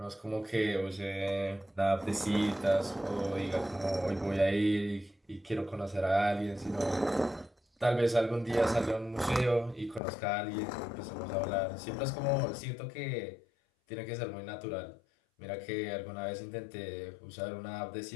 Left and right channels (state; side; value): drops out; right; at 10.0 s